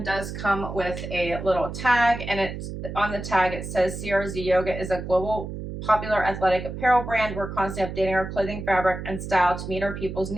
does come with a little tag, and on the tag it says CRZ Yoga is a global popular athletic apparel brand. We're constantly updating our clothing fabric and style to meet our people's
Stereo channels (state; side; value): noise; right; hum, 8 dB below the sound